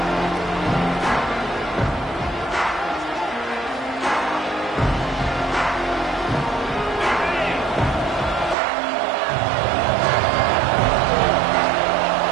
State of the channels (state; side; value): drops out; left; at 8.6 s